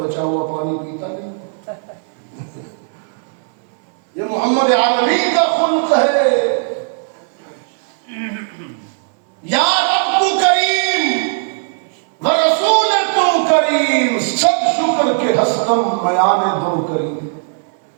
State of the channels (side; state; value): left; silent; digital silence